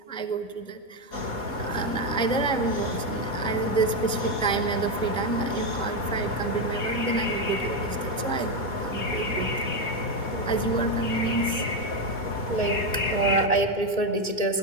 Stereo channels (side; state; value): right; late; 2.2 ms